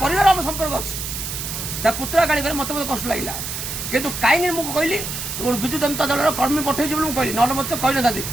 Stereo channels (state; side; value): noise; right; hiss, 6 dB below the sound